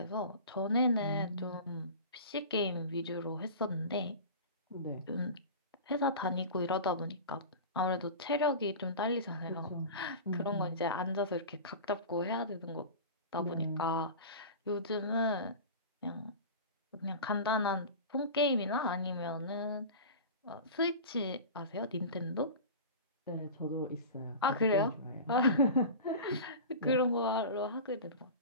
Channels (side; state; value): both; inverted; correlation -0.32